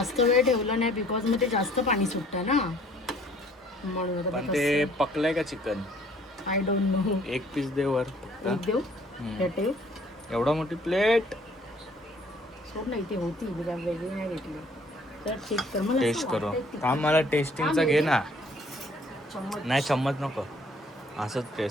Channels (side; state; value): both; normal; correlation 0.58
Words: वेळ ठेवलं नाही बिकॉज मग ते जास्त पाणी सुटतं ना, म्हणून पण ते पकलंय का चिकन. I don't know. एक पीस दे वर. देऊ हम्म. हे ठेव. एवढा मोठी प्लेट. सोड नाही ती होती वेगळी नाही घेतली तर चेक कर. मला टेस्ट करू. थांब, मला टेस्टिंगचा घे ना. नाही चम्मच नको, असंच